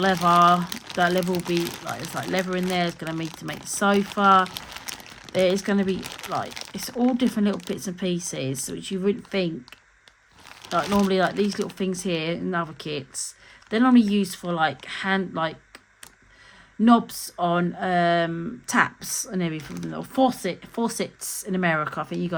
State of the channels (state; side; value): identical; both; correlation 1.00